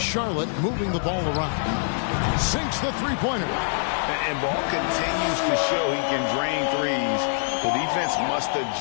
Charlotte moving the ball around. Sinks the three-pointer. And Ball continues to show he can drain threes. The defense must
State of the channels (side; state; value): right; silent; digital silence